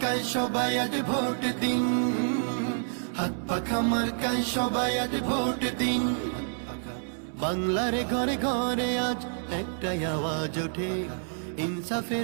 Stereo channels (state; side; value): silent; left; 59 dB below the other